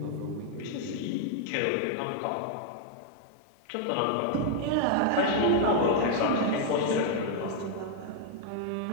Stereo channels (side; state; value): both; different; correlation 0.00